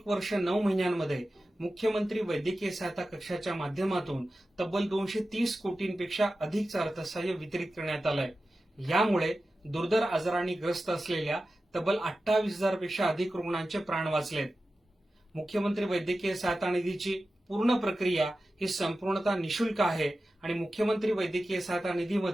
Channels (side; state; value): both; normal; correlation 0.94